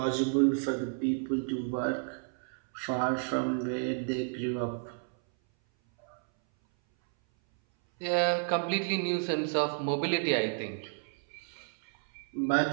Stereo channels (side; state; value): left; silent; 57 dB below the other